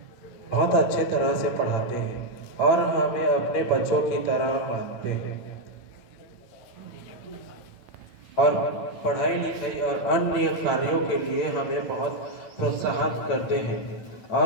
बहुत अच्छे तरह से पढ़ाते हैं और हमें अपने बच्चों की तरह मानते हैं, और पढ़ाई लिखाई और अन्य कार्यों के लिए हमें बहुत प्रोत्साहित करते हैं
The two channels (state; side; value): late; right; 9.0 ms